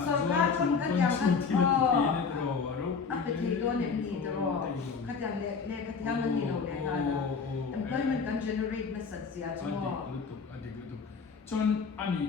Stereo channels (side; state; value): right; quieter; 5.3 dB